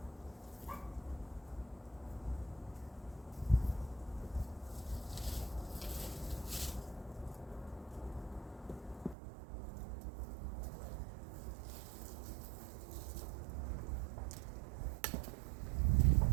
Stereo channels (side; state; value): left; drops out; at 9.2 s